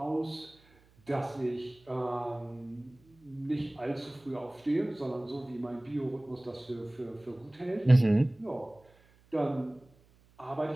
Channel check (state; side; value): noise; right; hum, 30 dB below the sound